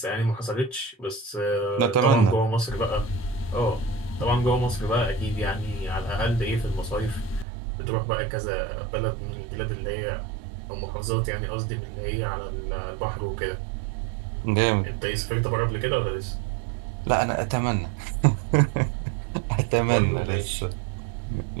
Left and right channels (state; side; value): drops out; left; at 7.5 s